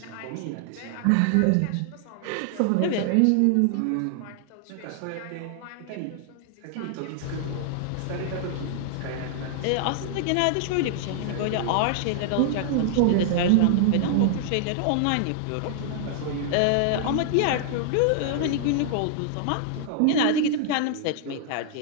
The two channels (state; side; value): different; both; correlation -0.01